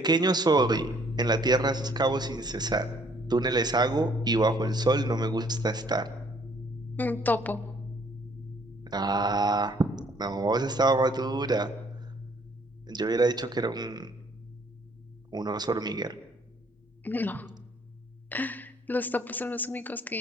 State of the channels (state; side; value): normal; both; correlation 0.63